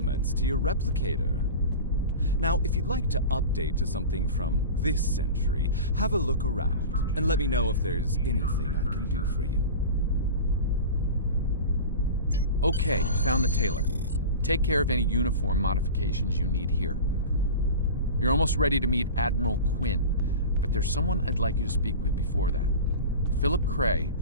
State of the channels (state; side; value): inverted; both; correlation -0.31